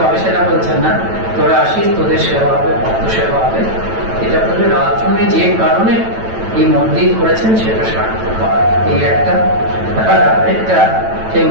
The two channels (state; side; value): late; left; 9.0 ms